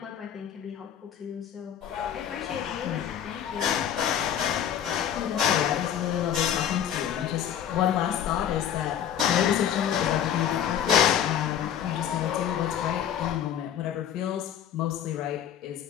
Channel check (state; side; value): quieter; right; 9.6 dB